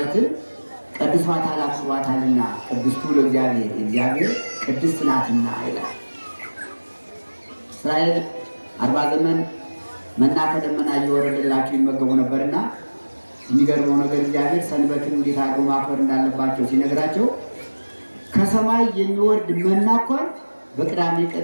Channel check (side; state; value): both; inverted; correlation -1.00